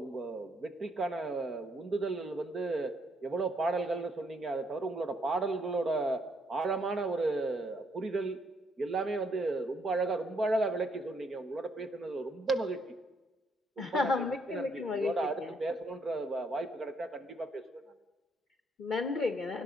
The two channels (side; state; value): both; normal; correlation 0.71